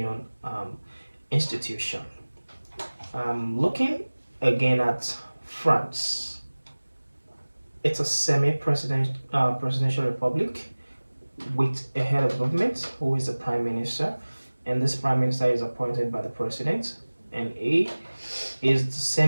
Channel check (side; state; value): both; inverted; correlation -1.00